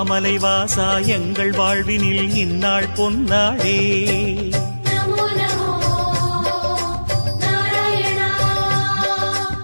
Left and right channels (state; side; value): inverted; both; correlation -1.00